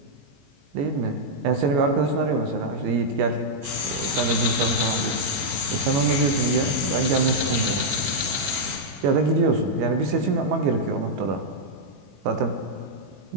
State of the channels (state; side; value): late; left; 21 ms